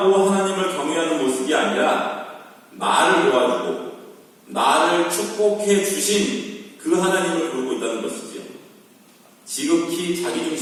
하나님을 경외하는 모습이 아니라 나를 도와주고 나를 축복해 주신 그 하나님을 부르고 있다는 것이지요. 지극히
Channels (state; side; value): identical; both; correlation 1.00